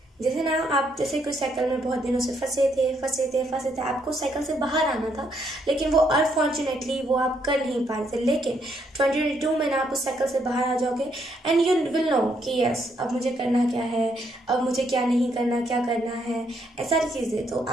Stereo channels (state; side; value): normal; both; correlation 0.73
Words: जैसे ना आप जैसे कोई साइकिल में बहुत दिनों से फंसे थे, आपको साइकिल से बाहर आना था लेकिन वो अनफॉर्चुनेटली वो आप कर नहीं पा रहे थे, लेकिन 2022 में ना आप उस साइकिल से बाहर आ जाओगे एंड यू विल नो कि यस अब मुझे करना क्या है, अब मुझे क्या नहीं करना, क्या करना है, ऐसा सारी चीज़ें। तो